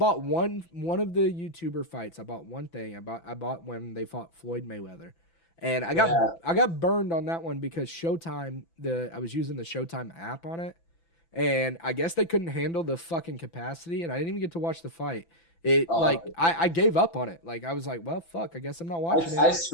one of the YouTuber fights. I bought one thing. I bought when they fought Floyd Mayweather, and I got burned on that one because Showtime. I was using the Showtime app on it, and I guess they couldn't handle the fucking capacity, and I didn't even get to watch the fight. I gave up on it. Like I was like, well, fuck. I guess I'm not watching it.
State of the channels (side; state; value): right; late; 5.9 ms